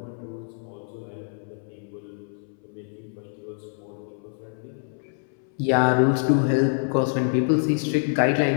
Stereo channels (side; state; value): right; silent; 61 dB below the other